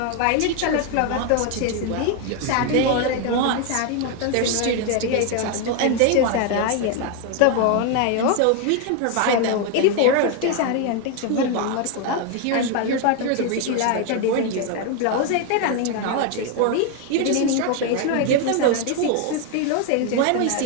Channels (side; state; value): both; different; correlation 0.01